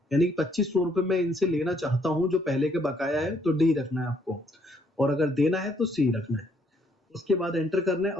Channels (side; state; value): both; normal; correlation 0.69